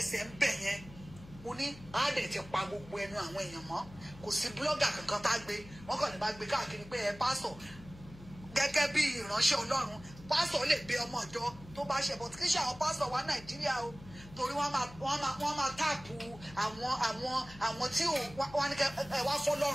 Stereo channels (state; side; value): noise; left; hum, 18 dB below the sound